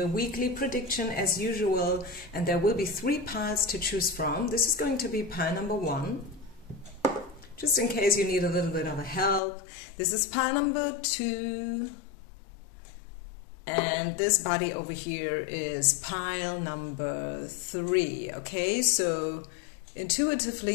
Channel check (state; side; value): drops out; right; at 9.4 s